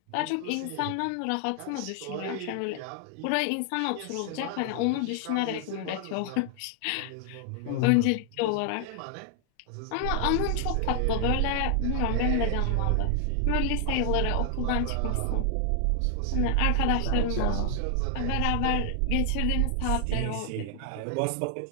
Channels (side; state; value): both; different; correlation 0.00